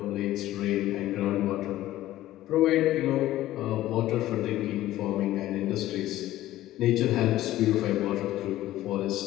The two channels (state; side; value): quieter; right; 14.8 dB